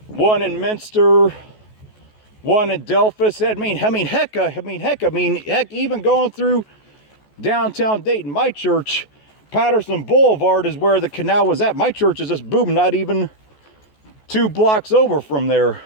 one in Minster, one in Delphus. Heck, even going through downtown Dayton, my church, Patterson Boulevard, is where the canal was at. My church is just boom, not even 2 blocks over from there.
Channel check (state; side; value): late; right; 14 ms